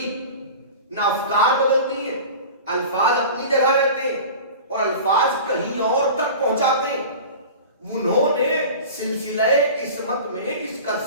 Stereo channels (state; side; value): inverted; both; correlation -0.36